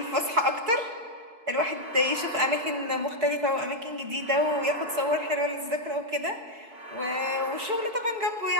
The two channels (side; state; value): left; late; 4.6 ms